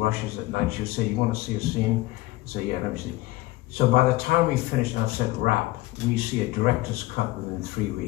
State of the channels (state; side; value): quieter; right; 18.8 dB